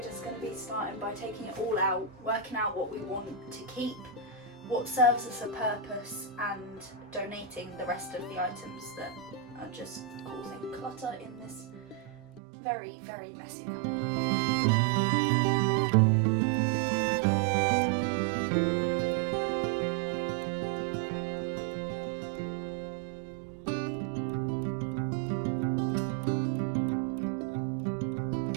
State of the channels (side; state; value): left; drops out; at 12.4 s